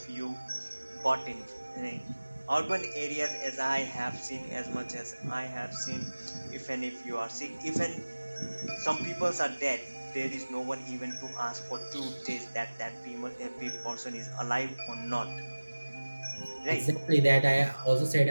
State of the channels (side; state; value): both; inverted; correlation -1.00